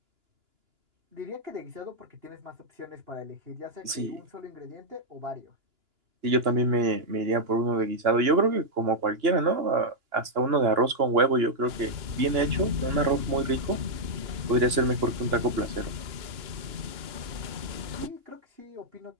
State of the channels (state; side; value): late; left; 2.9 ms